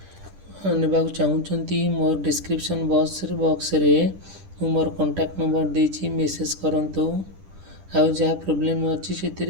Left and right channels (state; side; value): late; left; 10 ms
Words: ନେବାକୁ ଚାହୁଁଛନ୍ତି, ମୋର ଡିସ୍କ୍ରିପ୍ସନ୍ ବକ୍ସରେ ମୁଁ ମୋର କଣ୍ଟାକ୍ଟ ନମ୍ବର ଦେଇଛି, ମେସେଜ୍ କରନ୍ତୁ, ଆଉ ଯାହା ପ୍ରୋବ୍ଲେମ୍ ଅଛି